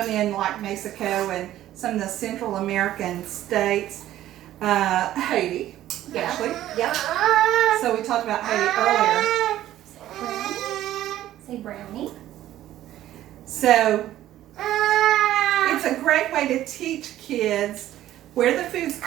in like Mexico and some of the Central American states, Haiti, actually. Yep. So we talked about Haiti earlier. Say brownie. So it's a great way to teach kids where the foods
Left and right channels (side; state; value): left; quieter; 13.4 dB